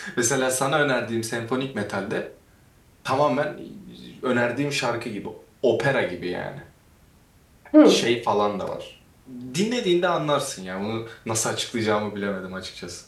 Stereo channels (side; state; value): both; identical; correlation 1.00